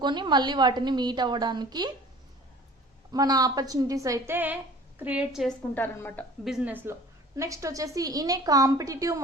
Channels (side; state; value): both; normal; correlation 0.46